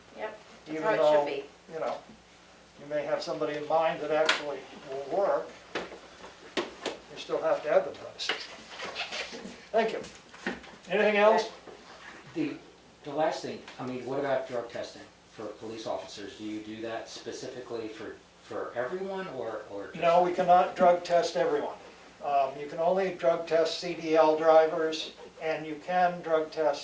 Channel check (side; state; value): both; identical; correlation 1.00